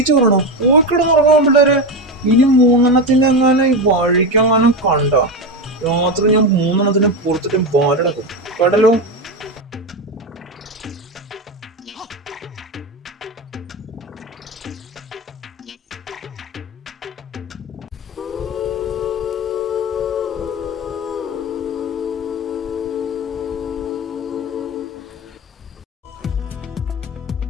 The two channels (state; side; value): normal; both; correlation 0.16